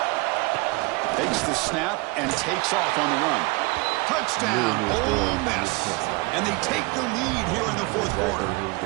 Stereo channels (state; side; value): quieter; left; 25.5 dB